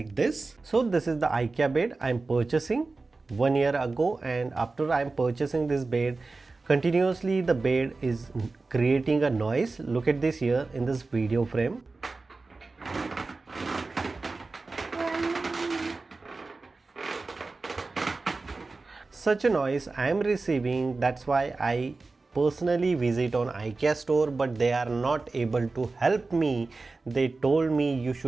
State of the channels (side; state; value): left; quieter; 3.7 dB